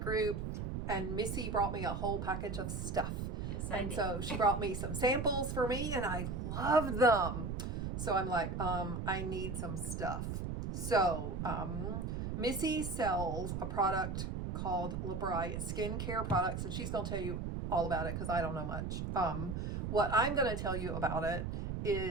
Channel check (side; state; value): right; noise; rumble, 3 dB below the sound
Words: group, and Missy brought me a whole package of stuff. Yes, and so she brought me some samples for me, and I loved them. So I'm like, I need some stuff. So Missy sells a product called Labri. It's skincare products, and she's gonna tell you all about it because I don't know much. What I'm gonna tell you about it